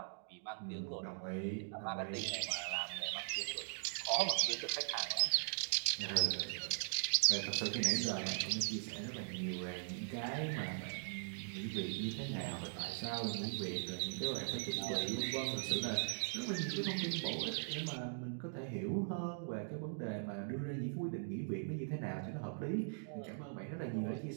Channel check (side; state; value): left; silent; digital silence